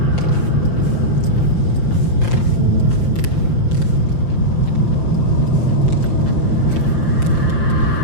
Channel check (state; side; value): late; right; 5.8 ms